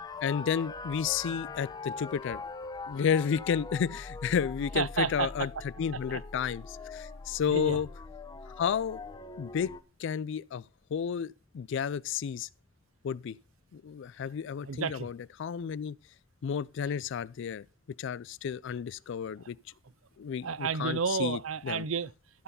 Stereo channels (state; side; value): quieter; right; 4.2 dB